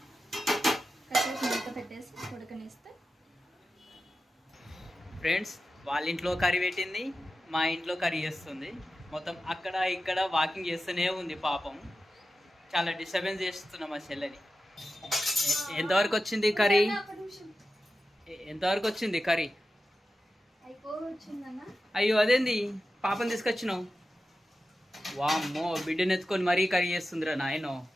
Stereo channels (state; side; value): normal; both; correlation 0.93